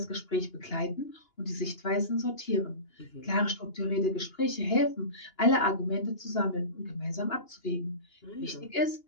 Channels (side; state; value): right; late; 2.9 ms